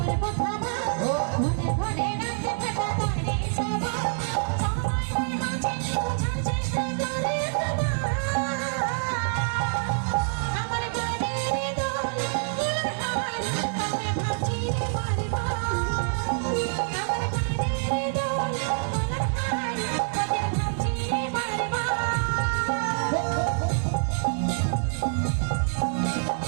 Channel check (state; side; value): silent; left; 61 dB below the other